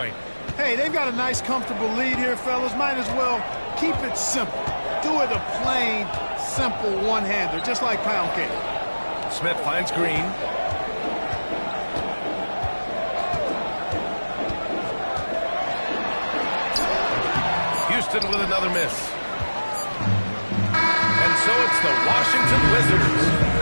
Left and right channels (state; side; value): inverted; both; correlation -1.00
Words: Hey, they've got a nice, comfortable lead here, fellas. Might as well keep it simple. Do it a plain, simple one-hander, just like pound cake. Smith finds Green. Houston with another miss. And so it's the Washington Wizards